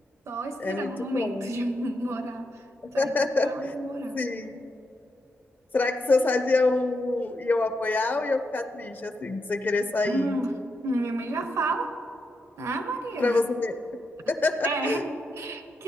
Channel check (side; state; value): both; normal; correlation 0.83